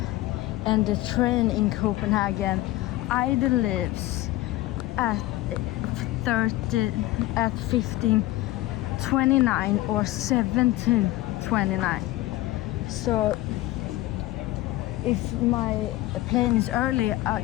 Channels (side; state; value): right; quieter; 17.1 dB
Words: and the train in Copenhagen either leaves at 15:29 or 17:29. So if my plane is early, I